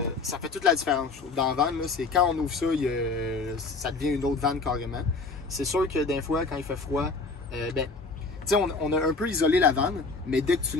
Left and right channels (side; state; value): right; quieter; 4.0 dB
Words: ça fait toute la différence. Dans la van, là, c'est quand on ouvre ça, ça devient une autre van carrément. C'est sûr que des fois, quand il fait froid, on a un peu isolé la vanne, mais dès que tu